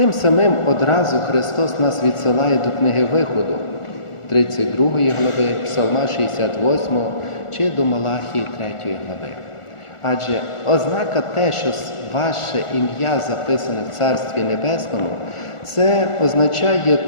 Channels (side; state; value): right; late; 1.4 ms